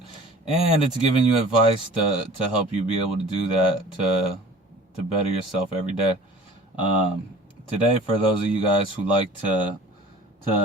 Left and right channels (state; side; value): normal; both; correlation 0.45